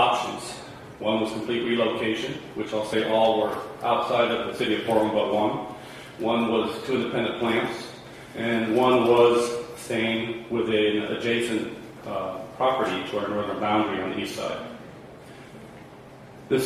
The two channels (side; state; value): both; identical; correlation 1.00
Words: One was complete relocation, which I'll say all were outside of the city of Portland but one. One was two independent plants, and one was staying within an adjacent property to our northern boundary on the east side.